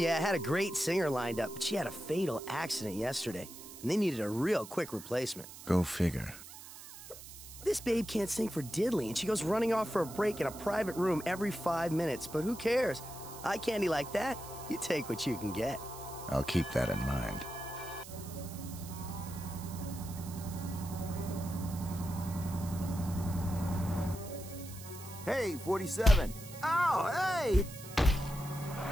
I had a great singer lined up, but she had a fatal accident yesterday, and they needed a real quick replacement. Go figure. This babe can't sing for diddly, and she goes running off for a break in a private room every 5 minutes, but who cares? Eye candy like that, you take what you can get. I'll keep that in mind. Hey, 47. Oh, hey!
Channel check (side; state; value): right; noise; hiss, 15 dB below the sound